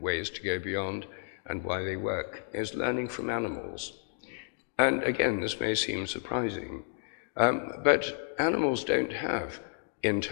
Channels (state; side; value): silent; right; digital silence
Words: to go beyond and why they work is learning from animals. And again, this may seem surprising, but animals don't have